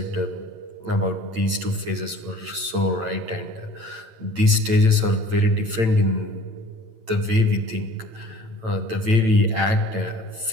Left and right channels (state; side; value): late; left; 9.0 ms